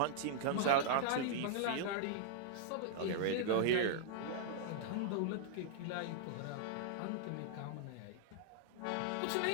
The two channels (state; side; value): different; both; correlation -0.02